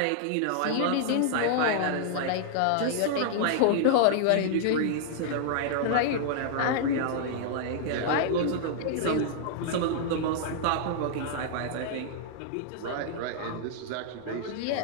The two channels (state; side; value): different; both; correlation -0.01